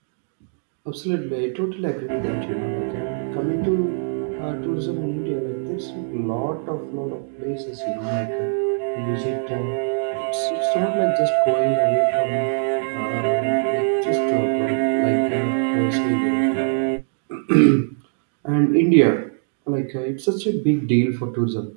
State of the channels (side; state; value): left; silent; digital silence